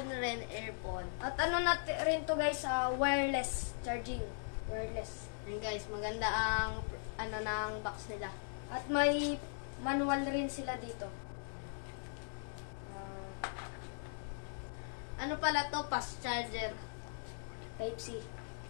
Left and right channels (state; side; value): silent; right; digital silence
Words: rin, earphone. At ano natin rin to guys, wireless charging. Wireless. Yun guys, maganda ang ano ng box nila. At may manual rin sila dito. Ano pala to? Fast charger. Type-C.